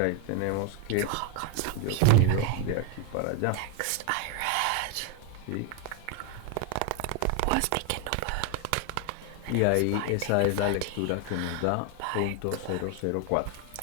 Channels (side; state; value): both; different; correlation 0.01